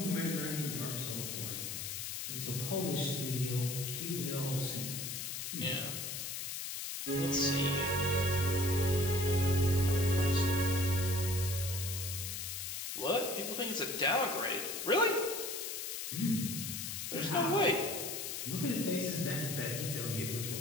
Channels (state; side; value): noise; left; hiss, 4 dB below the sound